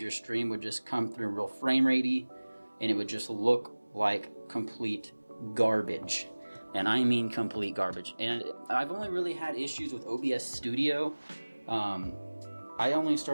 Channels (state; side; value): inverted; both; correlation -1.00